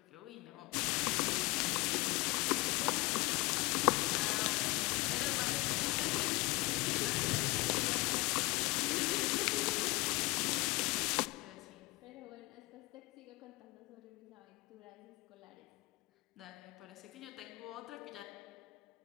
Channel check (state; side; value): quieter; right; 22.8 dB